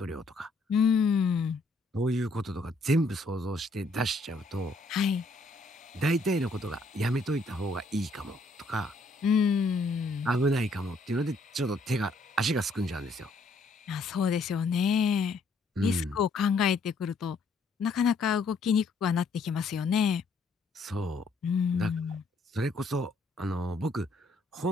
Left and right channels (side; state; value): right; quieter; 3.1 dB